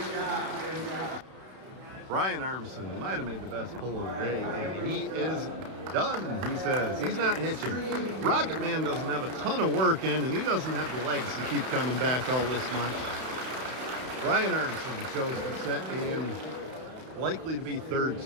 Brian Armisen might have made the best pull of the day, and he is done, he says. He's not hitching. Rocket Man doesn't have a ton of work in, and he doesn't have the legs to keep coming back all this much. Brian Armisen chose to sit in likely to be third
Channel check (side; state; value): left; late; 32 ms